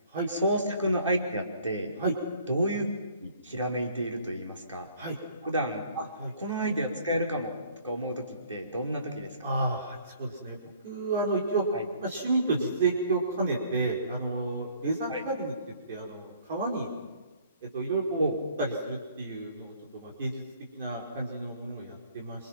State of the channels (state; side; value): inverted; both; correlation -0.57